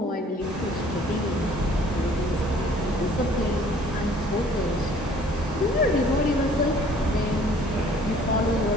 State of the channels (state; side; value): normal; both; correlation 0.55